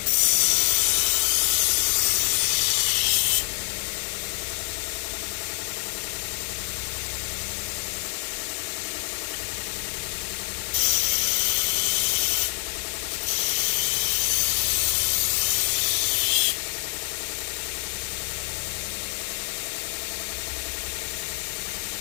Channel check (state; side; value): silent; right; 61 dB below the other